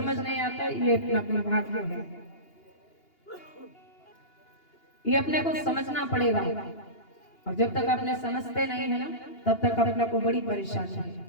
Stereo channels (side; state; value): right; late; 2.8 ms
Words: नहीं आता। ये अपना अपना भाग्य है, ये अपने को समझना पड़ेगा। और जब तक अपने समझते नहीं है ना, तब तक अपने को बड़ी परेशानी